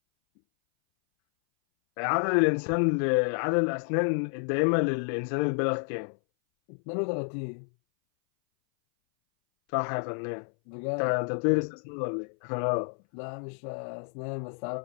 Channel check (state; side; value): silent; right; 58 dB below the other